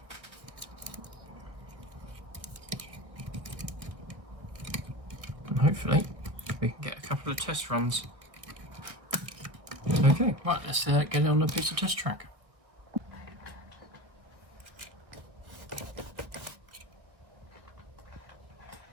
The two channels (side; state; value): left; late; 1.4 ms